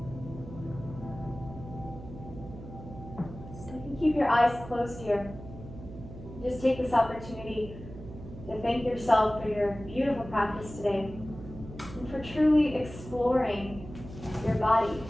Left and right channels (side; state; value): right; noise; hum, 14 dB below the sound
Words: Keep your eyes closed here. Just take this opportunity to thank yourself for your beautiful practice today and for truly exploring your body,